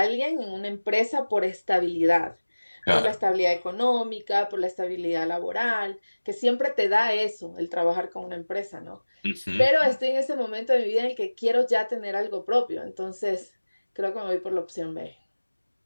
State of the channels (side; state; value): both; inverted; correlation -1.00